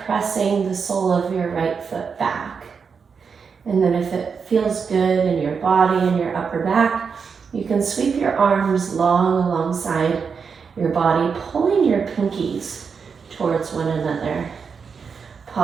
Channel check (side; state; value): left; quieter; 5.9 dB